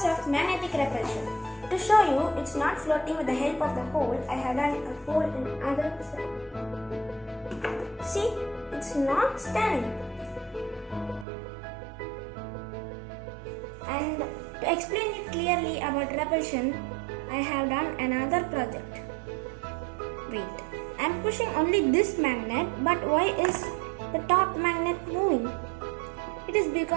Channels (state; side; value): drops out; left; at 11.2 s